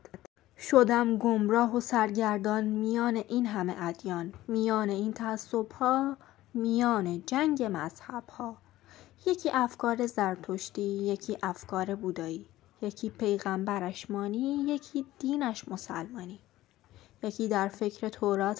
شدم گمراه و سرگردان میان این همه ادیان، میان این تعصب‌ها، میان جنگ مذهب‌ها. یکی افکار زرتشتی، یکی افکار بودایی، یکی پیغمبرش مانی، یکی دینش مسلمانی. یکی در فکر تورات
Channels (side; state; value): right; quieter; 15.7 dB